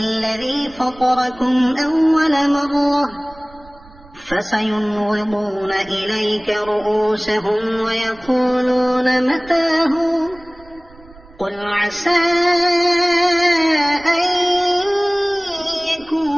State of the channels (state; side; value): noise; right; rumble, 23 dB below the sound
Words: فطركم أول مرة فسينغضون إليك رؤوسهم ويقولون متاه قل عسى أن